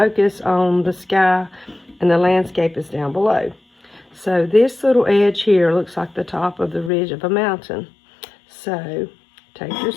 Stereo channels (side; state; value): right; drops out; at 6.9 s